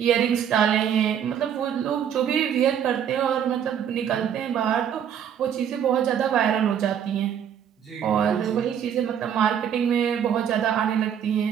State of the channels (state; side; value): quieter; left; 8.9 dB